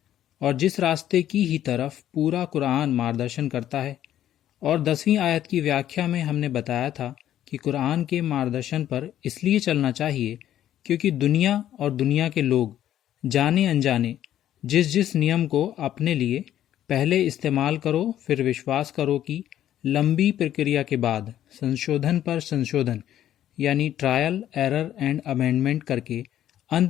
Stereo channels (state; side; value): quieter; right; 11.7 dB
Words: और जिस रास्ते की ही तरफ पूरा कुरान मार्गदर्शन करता है। और 10वीं आयत की व्याख्या में हमने बताया था कि कुरान के मार्गदर्शन पर इसलिए चलना चाहिए क्योंकि दुनिया और दुनिया के लोग जाने अनजाने जिस जिस नियम को अपने लिए पहले इस्तेमाल करो फिर विश्वास करो कि लंबी प्रक्रिया के बाद संशोधन पर संशोधन यानी ट्रायल एरर एंड अमेंडमेंट करके